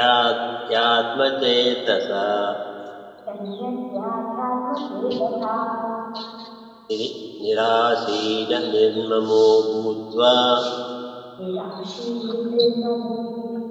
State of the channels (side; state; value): both; identical; correlation 1.00